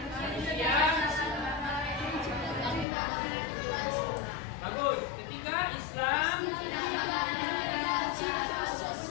bagus. Ketiga, Islam.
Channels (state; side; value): drops out; right; at 2.9 s